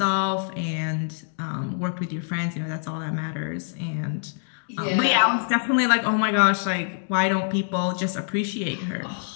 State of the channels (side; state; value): right; silent; digital silence